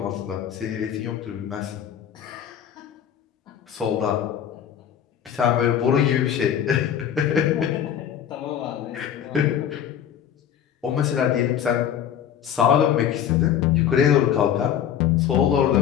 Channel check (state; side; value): quieter; right; 9.4 dB